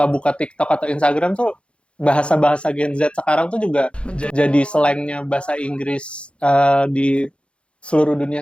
buka TikTok atau Instagram tuh bahasa-bahasa Gen Z sekarang tuh juga jadi slangnya bahasa Inggris di seluruh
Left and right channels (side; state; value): right; late; 0.058 ms